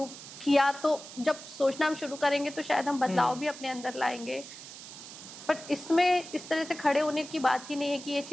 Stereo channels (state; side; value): noise; right; hiss, 14 dB below the sound